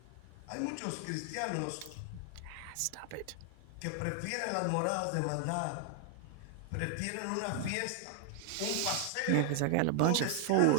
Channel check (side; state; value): both; different; correlation 0.00